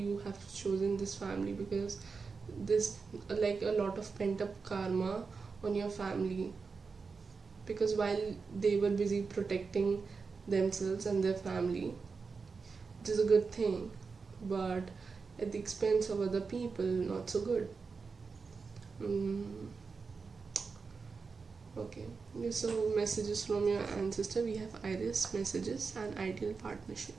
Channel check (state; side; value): quieter; left; 4.8 dB